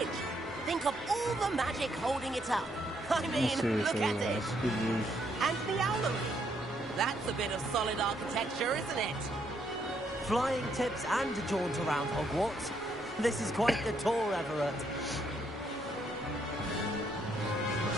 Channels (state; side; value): normal; both; correlation 0.73